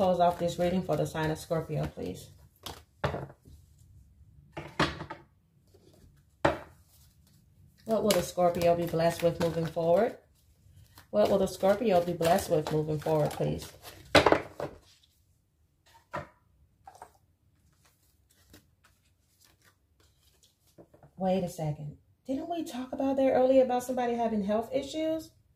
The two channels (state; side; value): identical; both; correlation 1.00